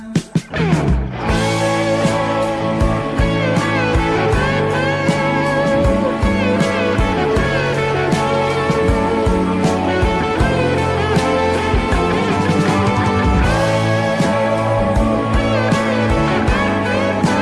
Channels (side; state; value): both; identical; correlation 1.00